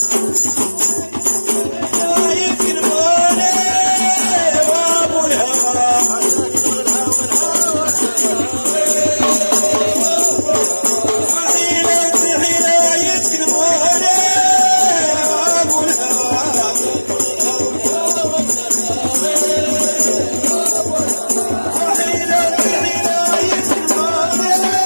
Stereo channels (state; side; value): inverted; both; correlation -1.00